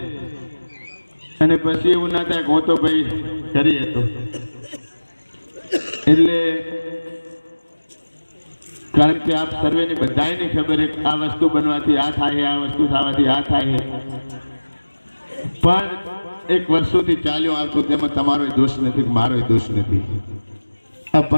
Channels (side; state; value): both; inverted; correlation -1.00